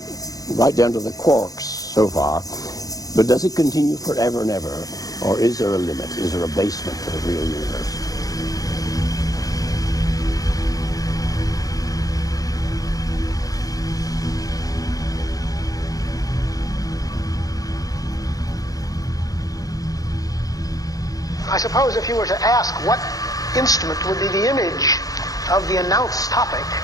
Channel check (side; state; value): right; late; 0.17 ms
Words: right down to the quarks so far. But does it continue forever and ever? Or is there a limit? Is there a basement to the real universe? I suppose if you were to ask what instrument would be the image of the announced topic,